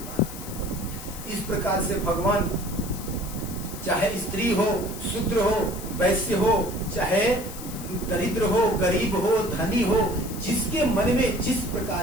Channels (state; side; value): noise; left; hiss, 13 dB below the sound